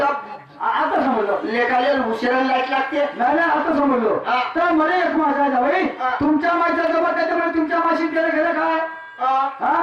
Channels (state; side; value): identical; both; correlation 1.00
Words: आता समजलं लेखाले उशिरा लाईट लागते नाही नाही आता समजलो हा. तर मला एक माझा भाई हा. तुमच्या माईचा जमत त्याच्यामुळे तुमच्या माशीत गेलं गेलं काय हा.